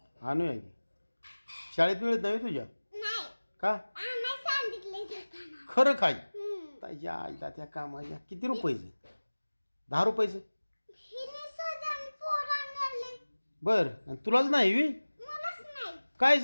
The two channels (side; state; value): both; inverted; correlation -1.00